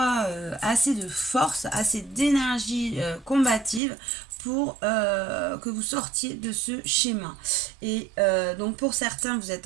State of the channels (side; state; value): left; drops out; at 3.8 s